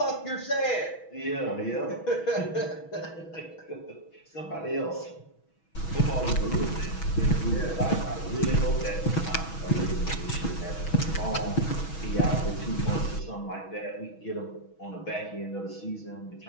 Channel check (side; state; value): right; late; 6.2 ms